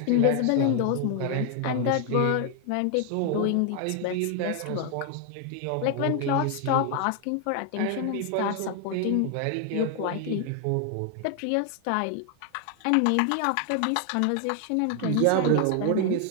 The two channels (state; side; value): different; both; correlation 0.00